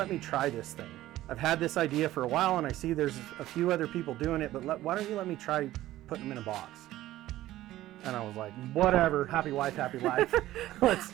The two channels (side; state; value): left; quieter; 15.1 dB